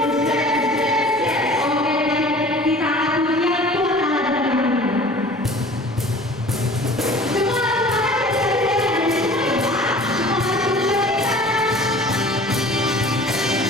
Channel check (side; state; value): both; normal; correlation 0.45